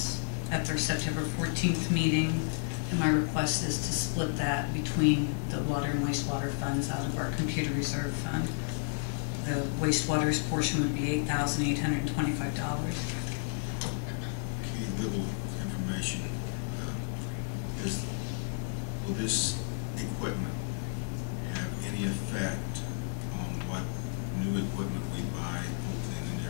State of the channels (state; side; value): silent; right; digital silence